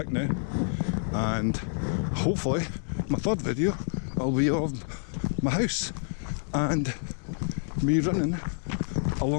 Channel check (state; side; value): silent; right; digital silence